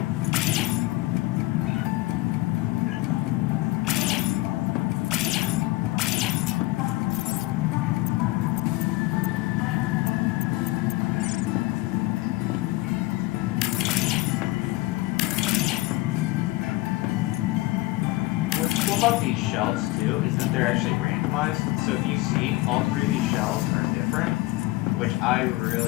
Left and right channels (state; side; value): quieter; right; 19.7 dB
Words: About these shells too is that they're actually randomized. So if you see, all three of these shells are different, which I